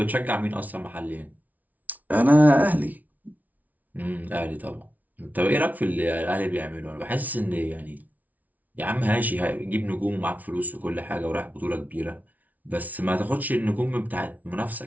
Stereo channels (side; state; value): left; late; 0.075 ms